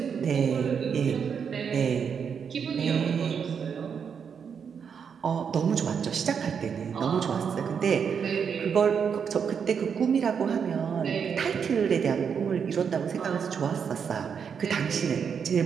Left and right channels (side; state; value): left; quieter; 6.9 dB